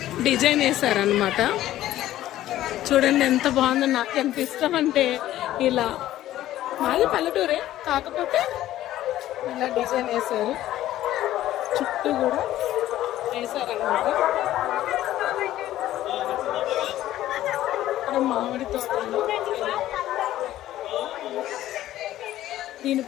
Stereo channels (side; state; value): right; quieter; 13.8 dB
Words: డిజైన్ వేసారనమాట. చూడండి ఎంత బాగుందో. నాకు ఎంత ఇష్టం అంటే ఇలా, మాది పల్లెటూరే కాకపోతే ఇలా డిజైన్ వేసారు. చుట్టూ కూడా వేసారనమాట. ఇక్కడ మామిడి తోటలు,